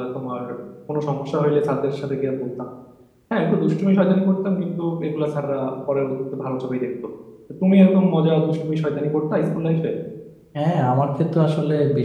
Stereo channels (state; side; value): identical; both; correlation 1.00